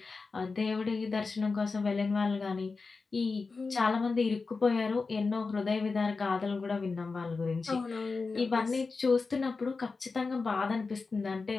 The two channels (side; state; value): right; quieter; 4.3 dB